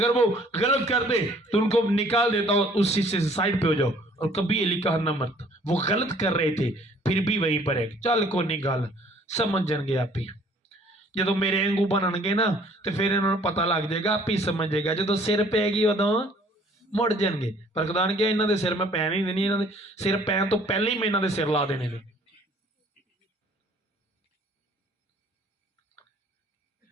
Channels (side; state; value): both; normal; correlation 0.57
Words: वो गलत कर दे तो उनको निकाल देता और उसी से साइड पे हो जाओ। और कभी एलिकाह ना मरता, वो गलत कर रहे थे फिर भी वहीं पर है, चल को नहीं गल समझ जाएंगे आप ही। जो मेरे वांगू बननगे ना तो फिर इन्होंने पता लग जाएगा, आप ही समझ जाएगा। जो सिर पैगी उदों मुड़ जाएंगे। पर खुदा ने कहा इन्हों के सिर मैं पैन ही देनी, इन्हों के सिर पैन तो पहले ही मैं इन्हों के सिर ला देने ने।